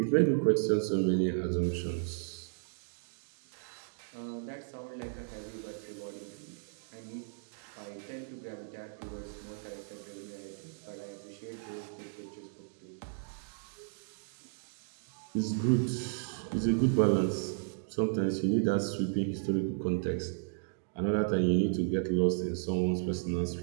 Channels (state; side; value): silent; left; digital silence